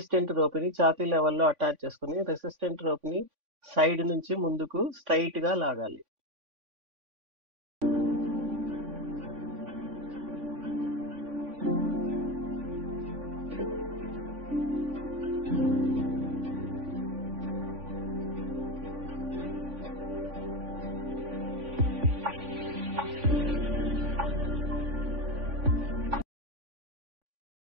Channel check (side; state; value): left; late; 3.5 ms